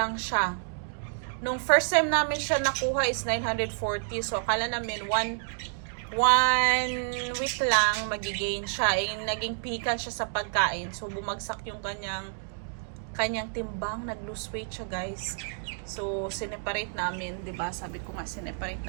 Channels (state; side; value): silent; left; digital silence